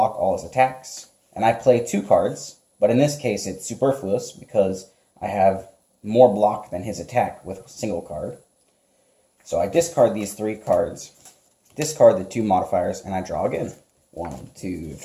all his attacks, and I play 2 cards, but in this case it's superfluous because I have more block than his attack with a single card. So I discard these 3 cards, discard the 2 modifiers, and I draw again. 1, 2,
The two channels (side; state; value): both; identical; correlation 1.00